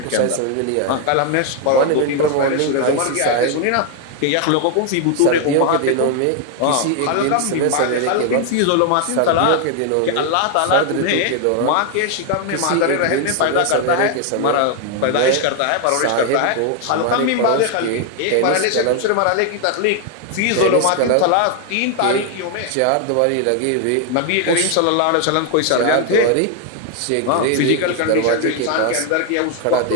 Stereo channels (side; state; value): both; different; correlation 0.00